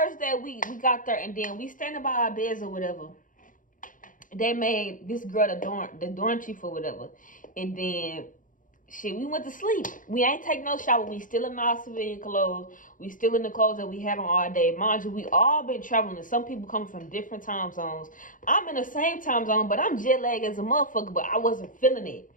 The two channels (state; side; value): late; right; 0.39 ms